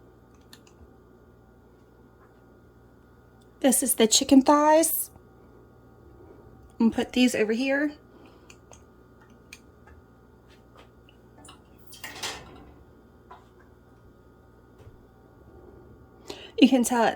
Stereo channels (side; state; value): both; identical; correlation 1.00